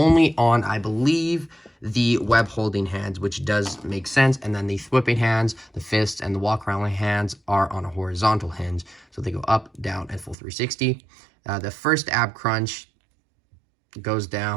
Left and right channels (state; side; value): drops out; left; at 10.4 s